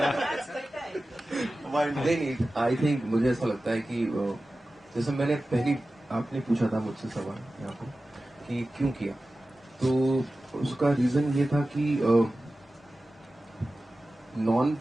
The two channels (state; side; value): normal; both; correlation 0.95